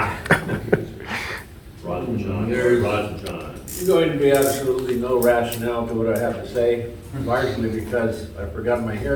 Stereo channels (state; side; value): identical; both; correlation 1.00